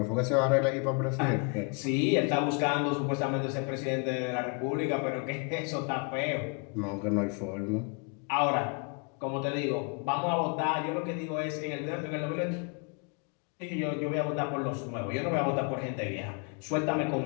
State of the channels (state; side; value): quieter; right; 34.2 dB